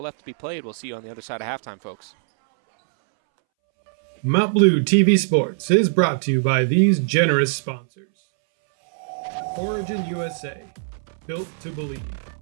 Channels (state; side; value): silent; left; 64 dB below the other